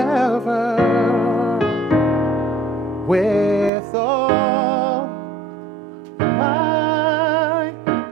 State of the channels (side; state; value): left; drops out; at 3.7 s